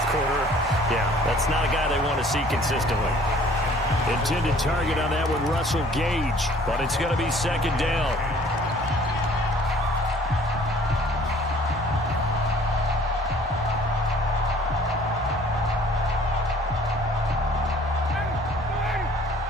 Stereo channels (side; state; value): both; normal; correlation 0.54